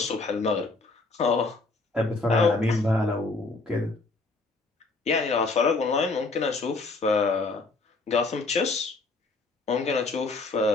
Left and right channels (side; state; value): right; quieter; 3.5 dB